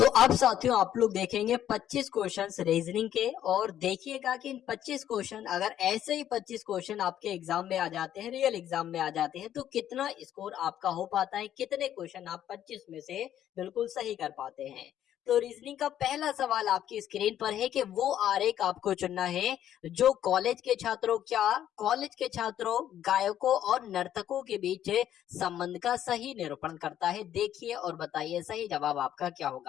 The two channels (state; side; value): quieter; right; 11.0 dB